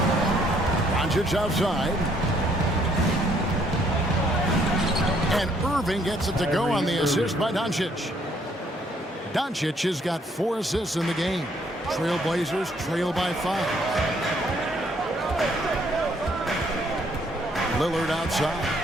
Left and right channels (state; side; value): normal; both; correlation 0.67